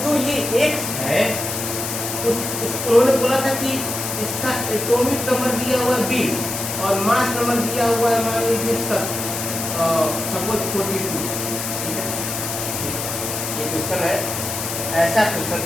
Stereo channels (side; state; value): left; noise; hiss, 4 dB below the sound